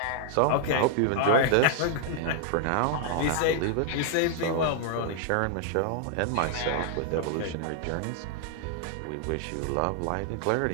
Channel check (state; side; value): different; both; correlation 0.00